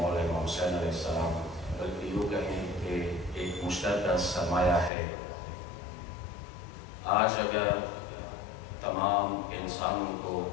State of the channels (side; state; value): right; drops out; at 4.9 s